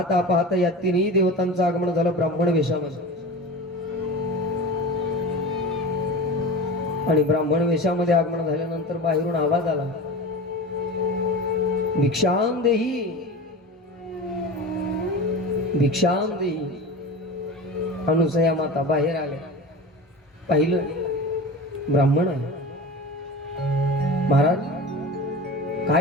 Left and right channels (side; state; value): both; normal; correlation 0.31